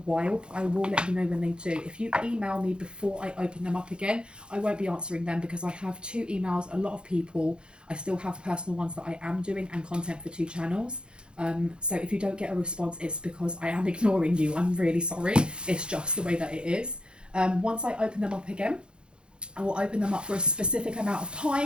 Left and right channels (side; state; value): left; late; 0.052 ms